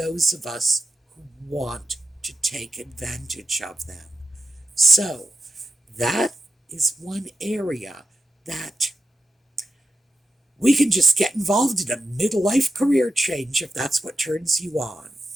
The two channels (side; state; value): both; normal; correlation 0.89